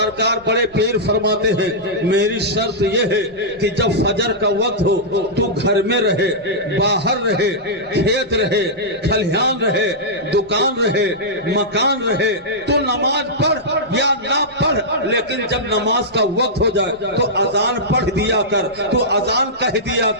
بڑے پیر فرماتے ہیں میری شرط یہ ہے کہ جب فجر کا وقت ہو تو گھر میں رہے، باہر رہے، کھیت رہے، کھلیان رہے، دکان رہے، مکان رہے، تو نماز پڑھ یا نہ پڑھ لیکن جب نماز کا وقت ہو جائے تو اذان پڑھ دیا کر، تو اذان کہہ دیا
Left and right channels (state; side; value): noise; left; rumble, 28 dB below the sound